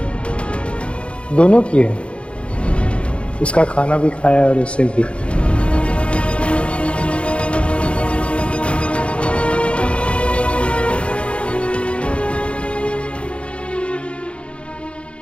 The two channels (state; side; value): late; right; 0.059 ms